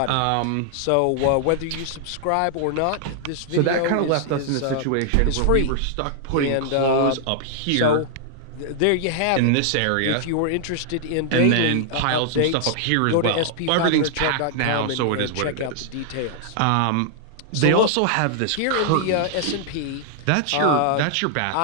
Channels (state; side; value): different; both; correlation 0.00